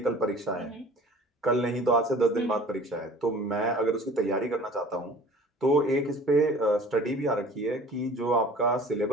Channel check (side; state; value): both; normal; correlation 0.46